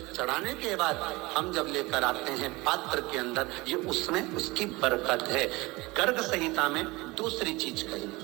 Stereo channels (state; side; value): quieter; left; 22.7 dB